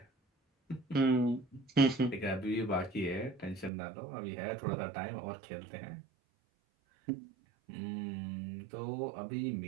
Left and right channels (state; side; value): drops out; left; at 3.7 s